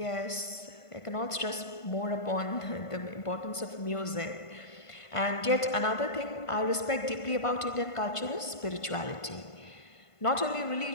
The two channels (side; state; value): right; late; 1.5 ms